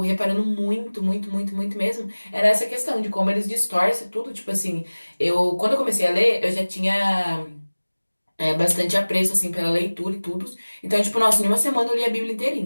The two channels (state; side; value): inverted; both; correlation -1.00